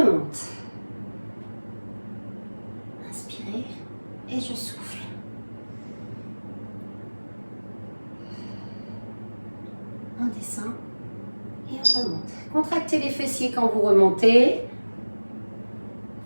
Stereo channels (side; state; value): both; inverted; correlation -1.00